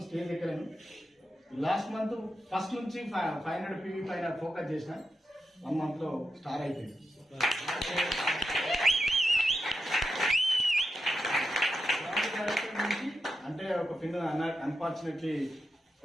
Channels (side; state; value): both; normal; correlation 0.88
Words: స్టేజ్ ఎక్కలేను. లాస్ట్ మంత్ ఫస్ట్ నుంచి 500 PV పైన ఫోకస్ చేసిన. 1 month లో స్టార్ అయిపోయింది. అంటే ఒక పిన్ అన్ఫార్చునేట్లీ